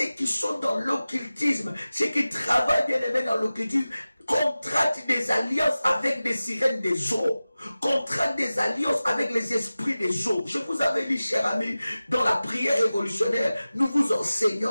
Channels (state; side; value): inverted; both; correlation -0.96